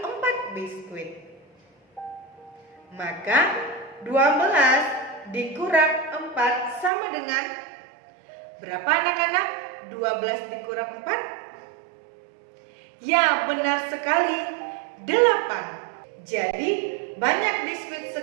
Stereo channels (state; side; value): drops out; left; at 6.9 s